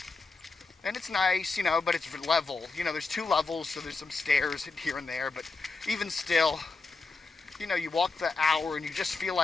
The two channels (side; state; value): right; quieter; 4.0 dB